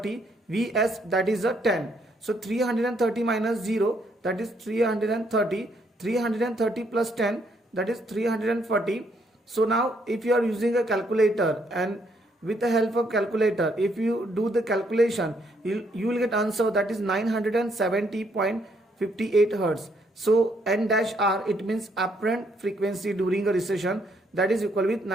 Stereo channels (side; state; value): both; normal; correlation 0.71